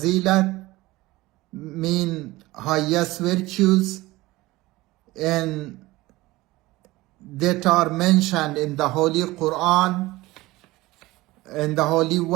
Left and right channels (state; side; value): quieter; left; 19.4 dB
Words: mean highest virtues, and that are mentioned in the Holy Quran and the Holy